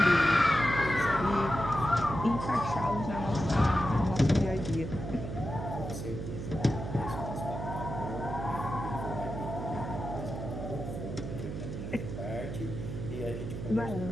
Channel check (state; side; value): noise; right; hum, 6 dB below the sound